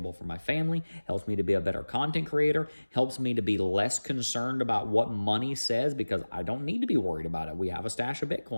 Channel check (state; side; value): inverted; both; correlation -1.00